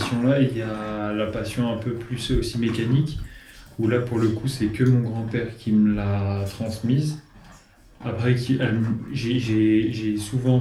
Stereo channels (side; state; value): both; identical; correlation 1.00